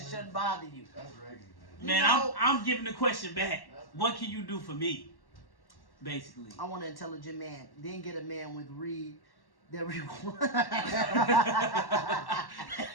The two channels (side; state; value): right; late; 1.1 ms